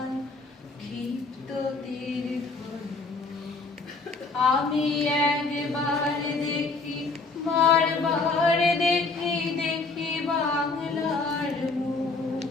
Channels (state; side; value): quieter; right; 3.8 dB